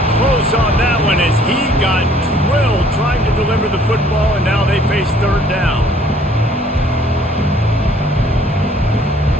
close on that one as he got drilled trying to deliver the football, and now they face third down.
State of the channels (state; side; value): normal; both; correlation 0.59